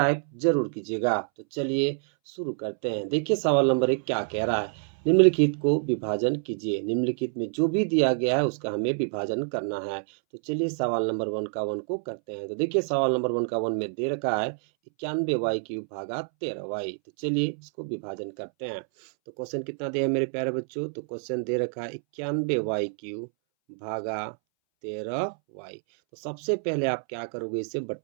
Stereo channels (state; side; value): silent; left; 60 dB below the other